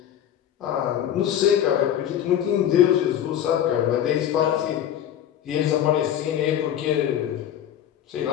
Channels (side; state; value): right; quieter; 10.5 dB